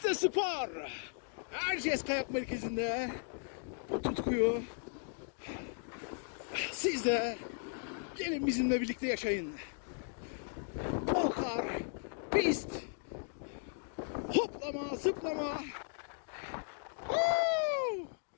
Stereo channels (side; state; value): right; silent; 53 dB below the other